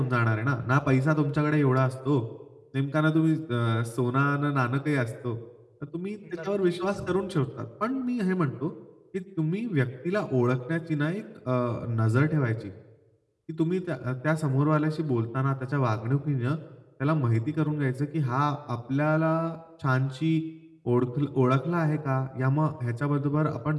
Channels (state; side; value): identical; both; correlation 1.00